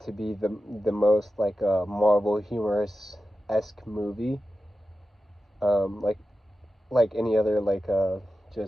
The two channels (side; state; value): both; normal; correlation 0.92